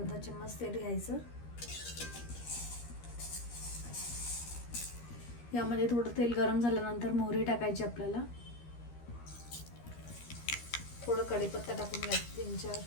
चम्मच तेल घ्यायचं. यामध्ये थोडं तेल गरम झाल्यानंतर मोहरी टाकायची आपल्याला. थोडं कढीपत्ता टाकून घ्यायचं 3-4.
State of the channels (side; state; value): right; late; 13 ms